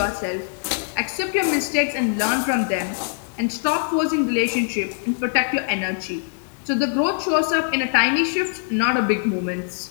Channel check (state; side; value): silent; right; digital silence